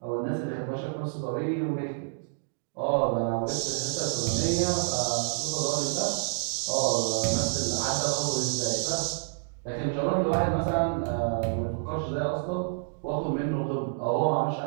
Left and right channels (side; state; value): left; silent; digital silence